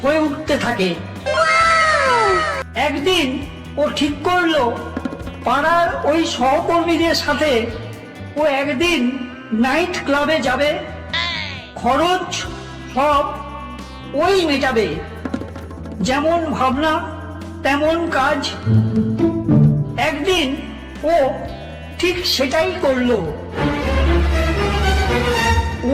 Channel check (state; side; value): identical; both; correlation 1.00